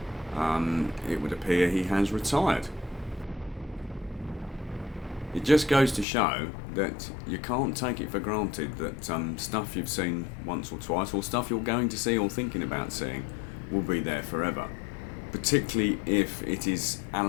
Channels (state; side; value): drops out; right; at 6.1 s